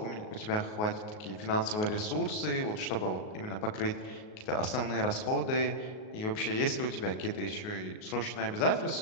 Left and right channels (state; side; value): late; right; 38 ms